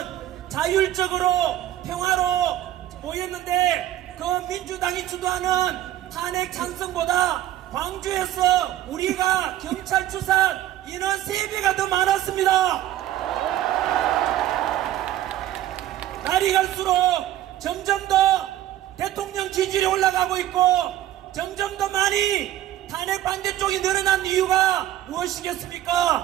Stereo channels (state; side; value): quieter; left; 13.1 dB